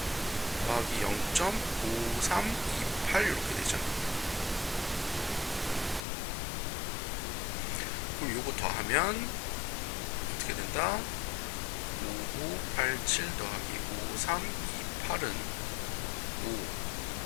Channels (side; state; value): right; drops out; at 6.1 s